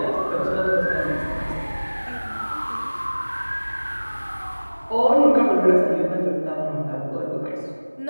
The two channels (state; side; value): inverted; both; correlation -1.00